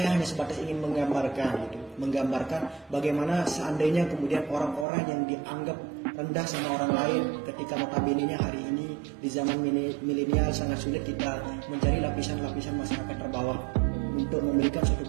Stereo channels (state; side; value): drops out; left; at 4.9 s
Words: hanya sebatas ingin menggambarkan gitu. menggambarkan bagaimana seandainya kemudian orang-orang yang dianggap rendah sama orang lain ketika notabene-nya hari ini di zaman milenial sangat sulit kita mencari lapisan-lapisan masyarakat terbawah untuk memberikan suatu